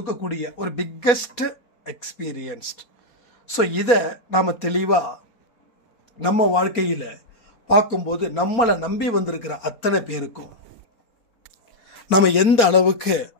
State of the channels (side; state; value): right; late; 4.2 ms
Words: ஒரு பிக்கஸ்ட் எக்ஸ்பீரியன்ஸ்ட். ஸோ இதை நாம தெளிவா நம்ம வாழ்க்கையில பார்க்கும்போது நம்மளை நம்பி வந்திருக்கிற அத்தனை பேருக்கும் நம்ம எந்த அளவுக்கு